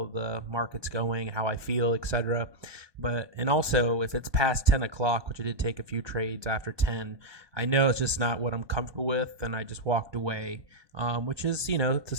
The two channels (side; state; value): left; late; 1.2 ms